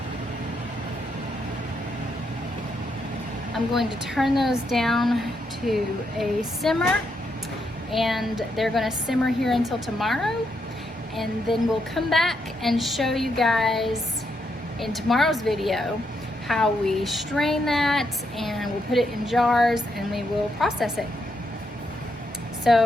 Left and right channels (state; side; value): normal; both; correlation 0.79